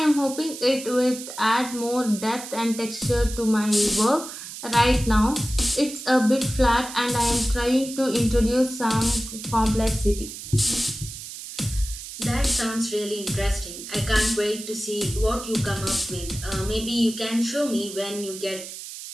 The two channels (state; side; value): noise; right; hiss, 11 dB below the sound